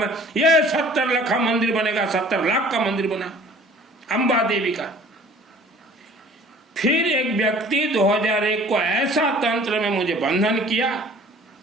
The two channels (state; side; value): normal; both; correlation 0.50